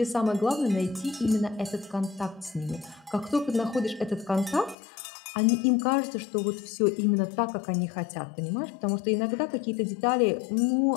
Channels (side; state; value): right; drops out; at 4.8 s